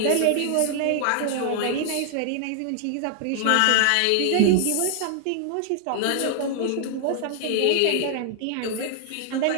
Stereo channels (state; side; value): different; both; correlation 0.00